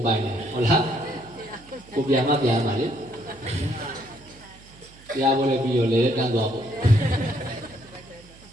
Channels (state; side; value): noise; right; hum, 23 dB below the sound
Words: ပိုင်တယ်ဟုတ်လားကိုပြန်မှပြန်ပါလေတရားပွဲလည်းပြီးတော့လေတန်းသွားပေါ့